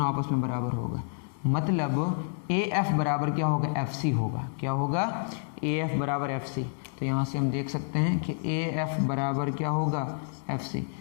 आपस में बराबर होगा। मतलब ए एफ बराबर क्या होगा? एफ सी होगा। क्या होगा? ए एफ बराबर एफ सी। तो यहाँ से हम देख सकते हैं कि ए एफ बराबर क्या होगा? F C.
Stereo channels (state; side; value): silent; right; digital silence